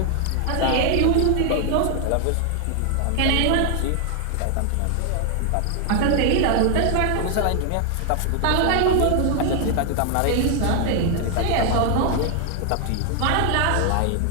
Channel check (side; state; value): both; different; correlation 0.00